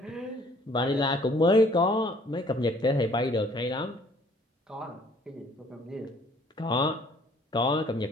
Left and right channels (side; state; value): both; normal; correlation 0.58